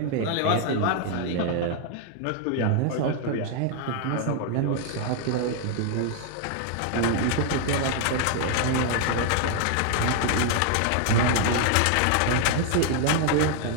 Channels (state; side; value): different; both; correlation 0.00